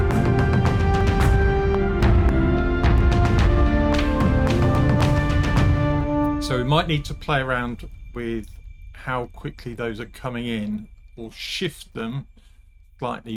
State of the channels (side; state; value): both; identical; correlation 1.00